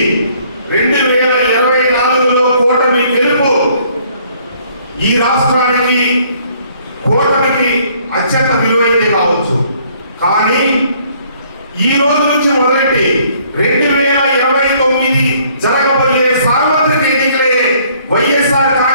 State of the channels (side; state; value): both; inverted; correlation -0.62